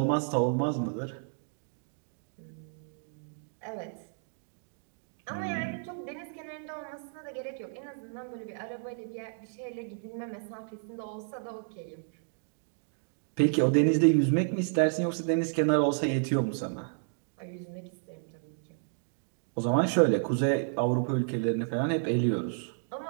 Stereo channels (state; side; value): silent; left; digital silence